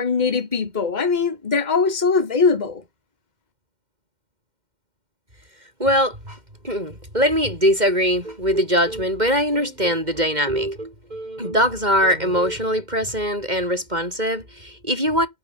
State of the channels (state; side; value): late; left; 2.1 ms